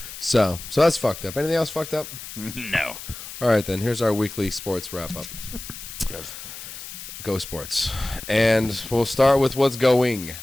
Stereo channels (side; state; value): left; noise; hiss, 12 dB below the sound